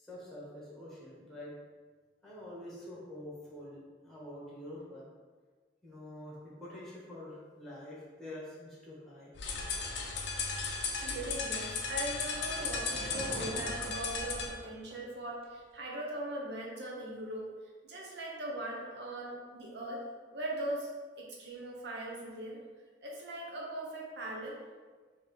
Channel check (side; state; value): both; normal; correlation 0.15